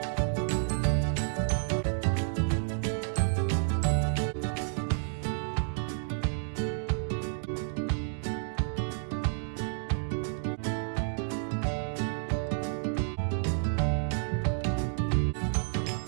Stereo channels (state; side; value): silent; left; digital silence